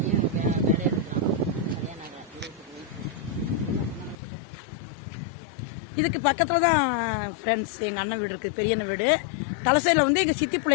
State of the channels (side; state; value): right; drops out; at 4.2 s